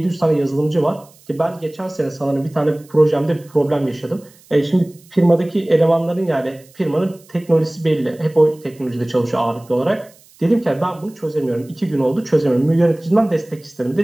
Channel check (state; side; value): noise; right; hiss, 27 dB below the sound